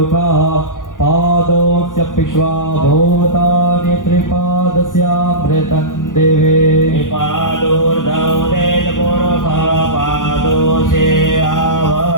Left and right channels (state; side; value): late; right; 0.88 ms